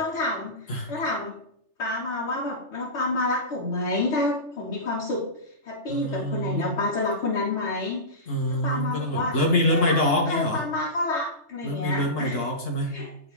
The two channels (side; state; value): right; late; 3.3 ms